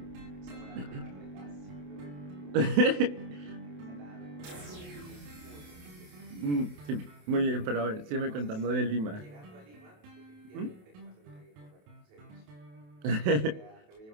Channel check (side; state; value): left; late; 28 ms